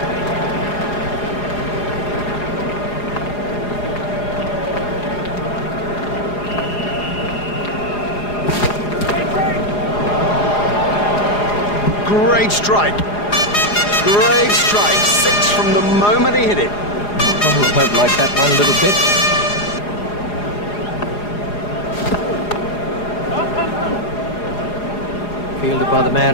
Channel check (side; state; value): right; late; 4.8 ms